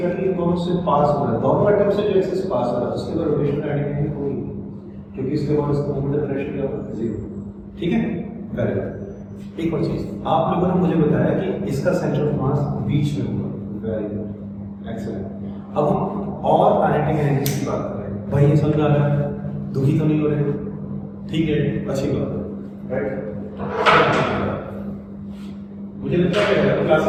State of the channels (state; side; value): identical; both; correlation 1.00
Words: दोनों से पास हो रहा है, दोनों एटम से जो एक्सिस पास हो रहा है उसके बाद रोटेशन काइनेटिक एनर्जी होगी क्योंकि इसके बाद इसका मोमेंट ऑफ इनर्शिया क्या होगा? 0। ठीक है, वेरी गुड। एक और चीज आप लोगों ने मुझे बताया कि इसका सेंटर ऑफ मास बीच में होगा। Very good, excellent. अब हम और काइनेटिक एनर्जी की बात कर रहे हैं। भाई ये समझ आ रहा है? दुखी तो नहीं हो रहे? ठीक है, अच्छी बात है राइट। मुझे लगता है